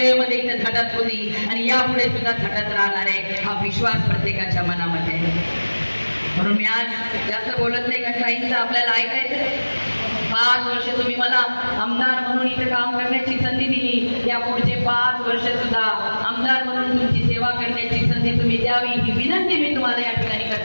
इथे झटत होती आणि यापुढे सुद्धा झटत राहणार आहे. हा विश्वास प्रत्येकाच्या मनामध्ये आहे. म्हणून मी आज जास्त बोलत नाही, कारण काहींचं आपल्याला ऐकायचं. 5 वर्ष तुम्ही मला आमदार म्हणून इथे काम करण्याची संधी दिली, या पुढचे 5 वर्ष सुद्धा आमदार म्हणून तुमची सेवा करण्याची संधी तुम्ही द्यावी ही विनंती मी तुम्हाला या ठिकाणी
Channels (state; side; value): inverted; both; correlation -1.00